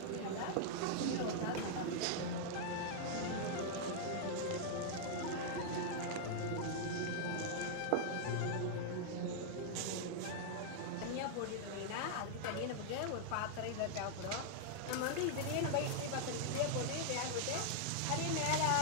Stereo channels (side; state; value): both; different; correlation -0.01